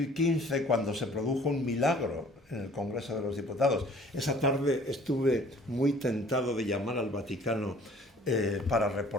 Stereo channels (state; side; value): normal; both; correlation 0.53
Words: cuando se produjo un milagro en el Congreso de los Diputados. Esa tarde estuve muy tentado de llamar al Vaticano para